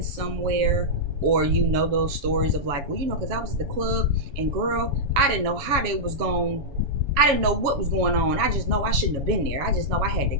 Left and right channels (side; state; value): left; late; 7.1 ms